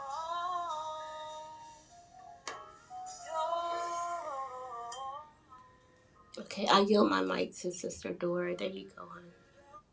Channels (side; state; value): both; identical; correlation 1.00